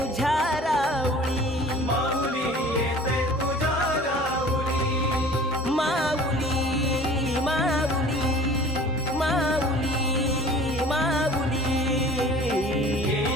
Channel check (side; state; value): both; normal; correlation 0.46